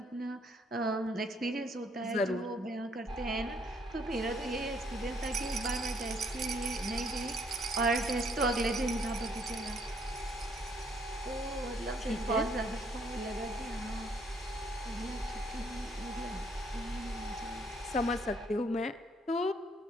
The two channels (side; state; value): both; normal; correlation 0.67